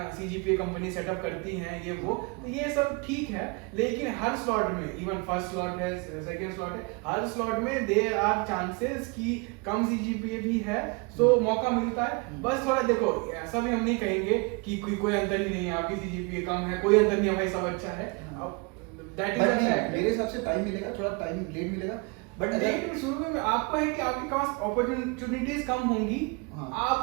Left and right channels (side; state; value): left; quieter; 30.5 dB